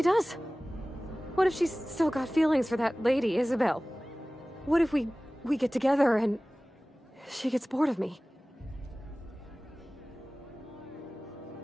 does? What if she's still got feelings for that lady, Isabel? What if we get together and she gets bored of me?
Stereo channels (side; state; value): both; normal; correlation 0.98